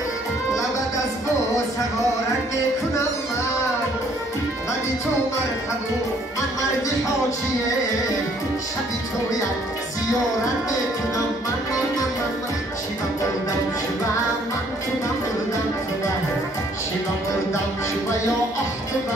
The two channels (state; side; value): normal; both; correlation 0.63